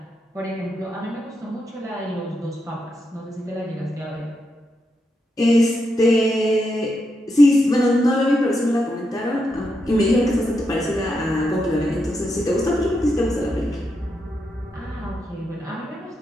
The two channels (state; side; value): normal; both; correlation 0.84